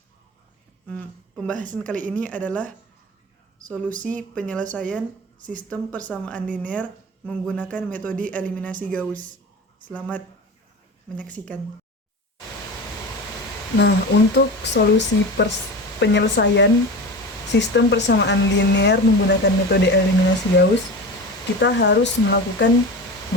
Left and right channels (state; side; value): normal; both; correlation 0.29